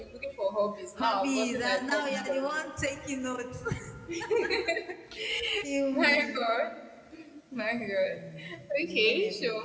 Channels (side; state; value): both; identical; correlation 1.00